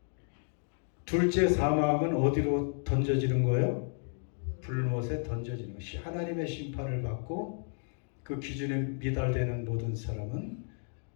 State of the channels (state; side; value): silent; right; 56 dB below the other